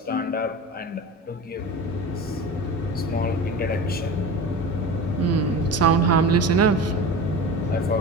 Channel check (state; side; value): normal; both; correlation 0.31